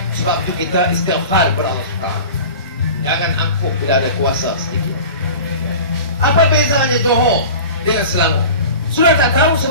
Sebab itu kita istighfar kepada Allah SWT. Jangan angkuh bila ada kuasa sedikit. Apa bezanya Johor dengan Selangor? Sudah tak tahu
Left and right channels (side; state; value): both; inverted; correlation -0.37